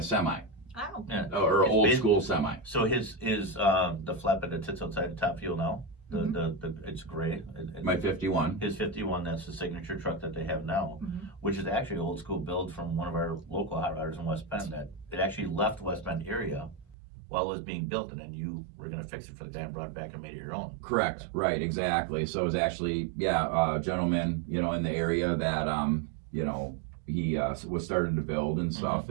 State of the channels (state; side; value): drops out; left; at 16.9 s